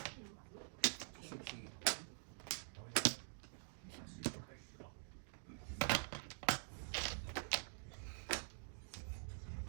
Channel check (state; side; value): silent; left; digital silence